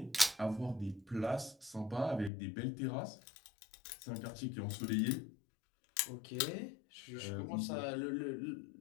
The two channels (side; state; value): right; drops out; at 2.3 s